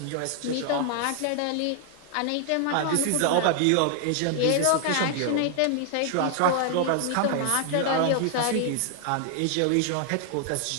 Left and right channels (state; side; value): different; both; correlation 0.00